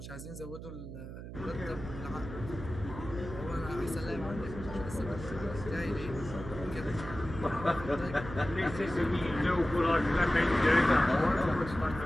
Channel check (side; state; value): right; noise; hum, 11 dB below the sound